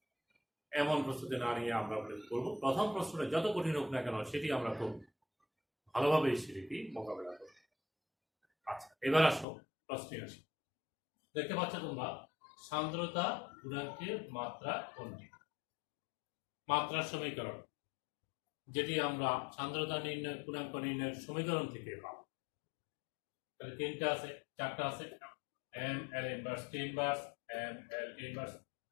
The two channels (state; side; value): drops out; right; at 9.5 s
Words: এমন প্রস্তুতি না নিয়ে আমরা করবো প্রথম প্রশ্নটা যত কঠিন হোক না কেন সেটি আমরা খুব ভালোভাবে সেটি মোকাবেলা করবো। আচ্ছা, এবার আসো প্রশ্নে আসি। দেখতে পাচ্ছ তোমরা, সান্দ্রতা গুণাঙ্কের মাত্রা কোনটি? মাত্রার সমীকরণ, যেটি আমরা সান্দ্রতা নির্ণয় গুণাঙ্ক নির্ণয়ের সমীকরণ থেকে পাবো। তাহলে তিনটা আছে, চারটা আছে, M L inverse T inverse, M L T inverse,